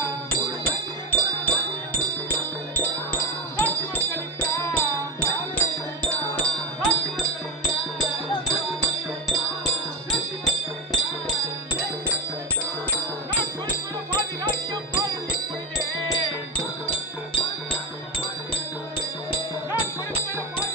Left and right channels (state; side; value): normal; both; correlation 0.12